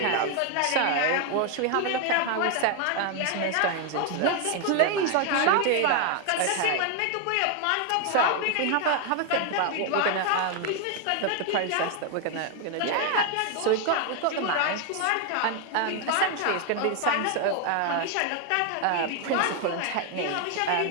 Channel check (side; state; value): both; different; correlation 0.01